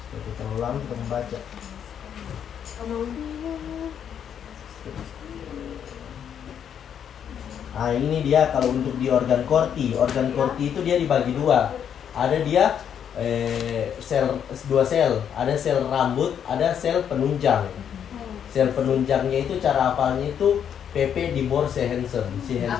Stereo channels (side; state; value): right; quieter; 8.6 dB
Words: Jadi terlalu lama kita membaca. Nah, ini dia kalau untuk di organ corti itu dia dibagi dua. Ada dia dua sel, ada sel rambut, ada sel penunjang. Sel penunjangnya itu cara hafalnya itu PP di bor Sihensen.